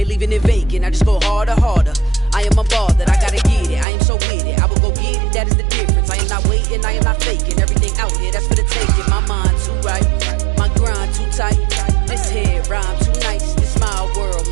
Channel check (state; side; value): drops out; left; at 3.9 s